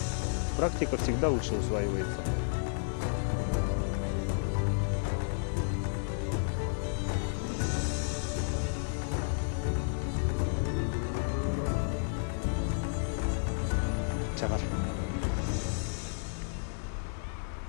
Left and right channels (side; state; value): right; silent; 56 dB below the other